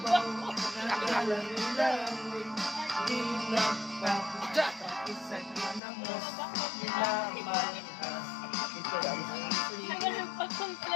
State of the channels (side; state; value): right; drops out; at 5.8 s